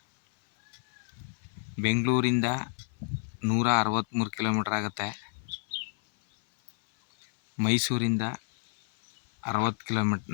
ಬೆಂಗಳೂರಿಂದ 163 ಕಿಲೋಮೀಟ್ರ್ ಆಗುತ್ತೆ. ಮೈಸೂರಿಂದ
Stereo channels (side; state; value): right; silent; 58 dB below the other